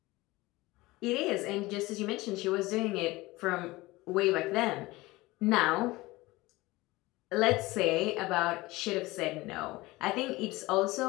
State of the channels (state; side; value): quieter; right; 20.4 dB